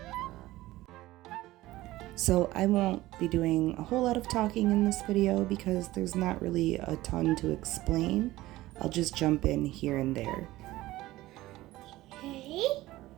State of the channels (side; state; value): left; quieter; 17.2 dB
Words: So I won't be doing a whole lot of talking in this video because there's not really a ton to explain. I'll just jump in here and there. Okay.